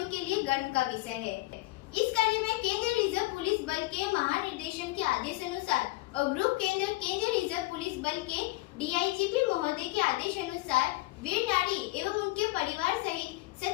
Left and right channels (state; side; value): quieter; right; 20.4 dB